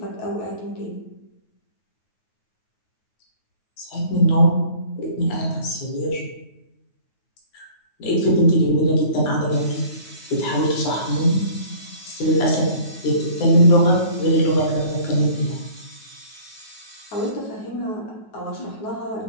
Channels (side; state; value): right; late; 9.4 ms